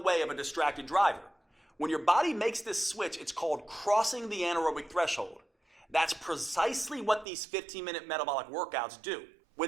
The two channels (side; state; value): left; drops out; at 7.2 s